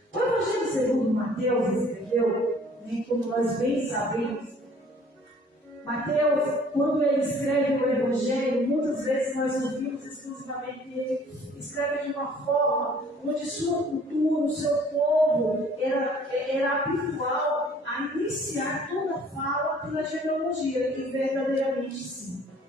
O Evangelho segundo Mateus escreveu, como nós bem sabemos, Mateus, quando ele escreve o Evangelho, muitas vezes nós ouvimos exclusivamente que ele escreve de uma forma onde sua cultura, o seu povo, era habitual a iniciar toda a fala pela genealogia, e verdadeiramente sim.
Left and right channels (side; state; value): both; normal; correlation 0.55